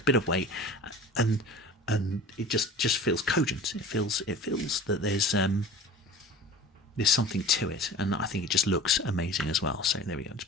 bit of weight, and it just feels cogent. It feels that there's something to it, and I think it just looks amazing as well. So there we go.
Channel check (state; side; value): normal; both; correlation 0.40